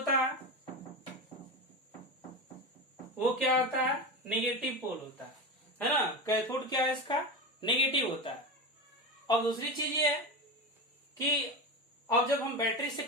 है वो क्या होता है? नेगेटिव पोल होता है ना। कैथोड क्या है इसका? नेगेटिव होता है। और दूसरी चीज ये है कि अब जब हम बैटरी से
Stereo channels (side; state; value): both; normal; correlation 0.21